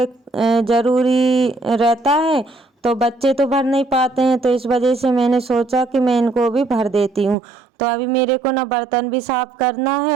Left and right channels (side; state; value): left; drops out; at 7.4 s